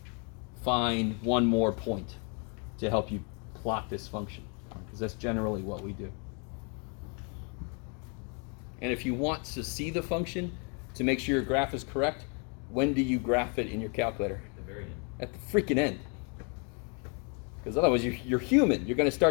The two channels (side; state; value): right; quieter; 37.3 dB